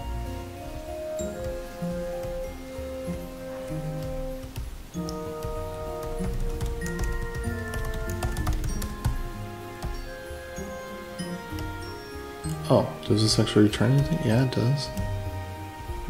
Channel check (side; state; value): both; identical; correlation 1.00